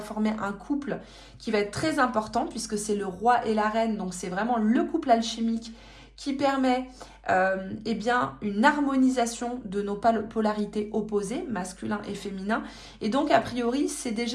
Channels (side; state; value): both; identical; correlation 1.00